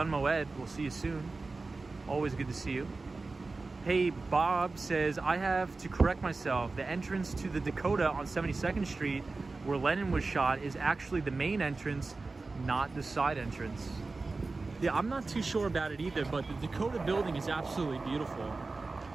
Moed, we'll see you soon. Always good to see you. Hey, Bob says, I have to correct myself. The entrance to the Dakota on 72nd Street, where Lennon was shot, is actually the main entrance, not the side entrance. Yeah, I'm not too sure about it either, but the Dakota building is absolutely beautiful.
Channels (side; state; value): left; quieter; 3.7 dB